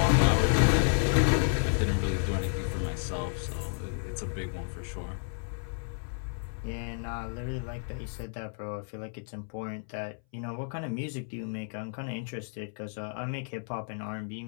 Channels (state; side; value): silent; right; 57 dB below the other